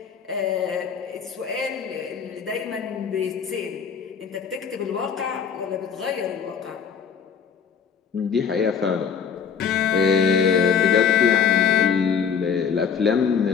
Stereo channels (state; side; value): quieter; right; 6.8 dB